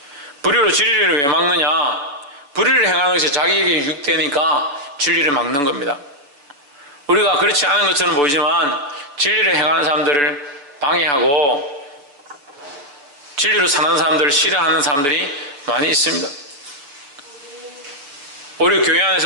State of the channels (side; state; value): left; late; 6.9 ms